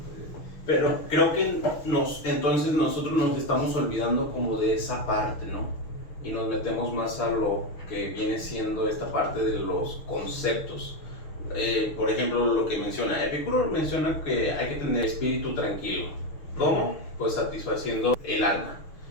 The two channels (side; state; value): right; late; 6.5 ms